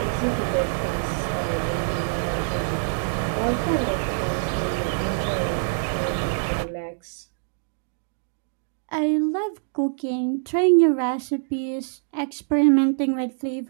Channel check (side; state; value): left; silent; digital silence